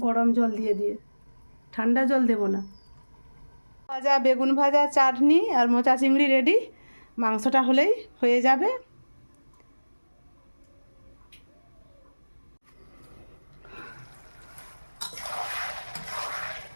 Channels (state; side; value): inverted; both; correlation -1.00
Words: গরম জল দিয়ে দিয়ে, ঠান্ডা জল দেবো না। ভাজা বেগুন ভাজা, চাটনি আর মোচা চিংড়ি রেডি। মাংসটা হলেই হয়ে যাবে।